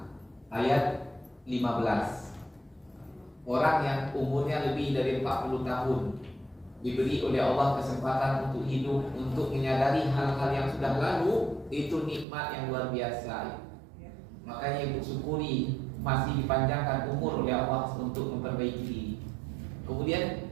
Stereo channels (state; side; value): drops out; left; at 12.2 s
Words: ayat 15. Orang yang umurnya lebih dari 40 tahun diberi oleh Allah kesempatan untuk hidup, untuk menyadari hal-hal yang sudah lalu, itu nikmat yang luar biasa. Makanya ibu syukuri masih dipanjangkan umur oleh Allah untuk memperbaiki diri. Kemudian